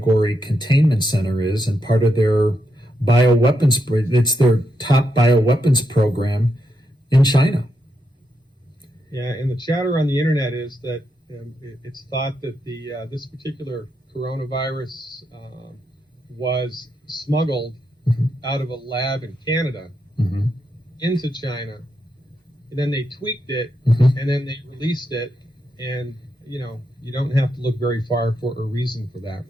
containment center is, and part of their bioweapons, it's their top bioweapons program in China. Yeah, and the chatter on the internet is that it's thought that this particular coronavirus was smuggled out of a lab in Canada into China, and then they tweaked it, and then they released it, and you don't have to look very far for a reason for that,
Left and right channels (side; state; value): both; normal; correlation 0.82